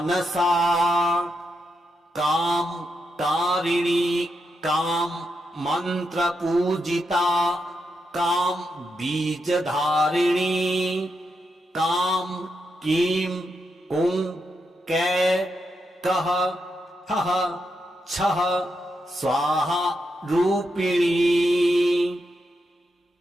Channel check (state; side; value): normal; both; correlation 0.84